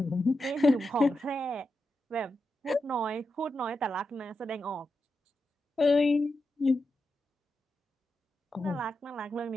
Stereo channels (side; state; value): both; normal; correlation 0.88